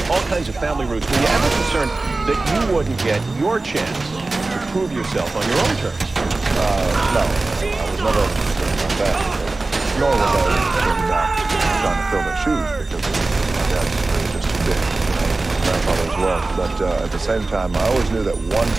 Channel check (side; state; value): left; quieter; 3.3 dB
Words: All kinds of family roots. Were you ever concerned that you wouldn't get your chance to prove yourself on your own terms? No, I was never concerned about that. Nor was I concerned about trying to fill their shoes, because my dad's really just too big. Grandfather as well, but at the same time, I always knew that